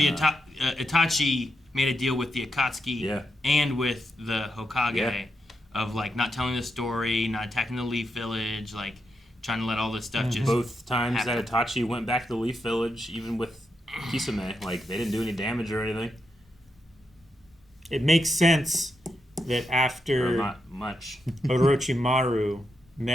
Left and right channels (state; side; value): normal; both; correlation 0.83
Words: Itachi made a deal with the Akatsuki and with the Hokage of like not telling the story, not attacking the Leaf Village, like trying to let all this stuff just Both times happen. that Itachi went back to the Leaf Village, even with Kisame, like they didn't do any damage or anything. It makes sense that Or after not much. Orochimaru